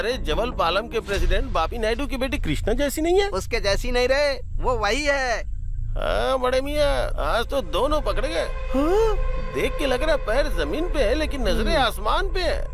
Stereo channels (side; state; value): both; identical; correlation 1.00